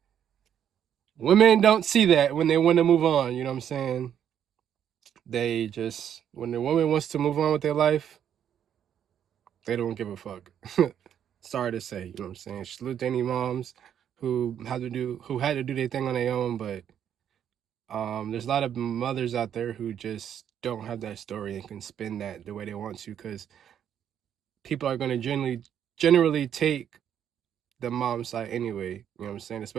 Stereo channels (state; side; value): quieter; left; 9.3 dB